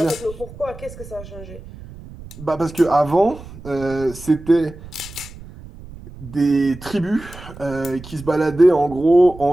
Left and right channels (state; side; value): noise; right; rumble, 16 dB below the sound